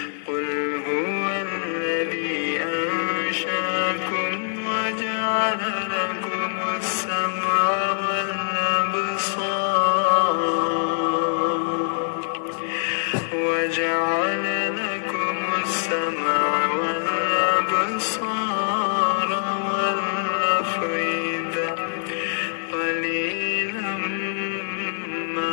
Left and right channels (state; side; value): silent; right; digital silence